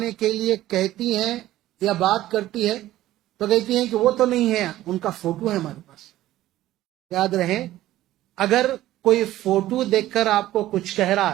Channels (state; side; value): quieter; left; 14.7 dB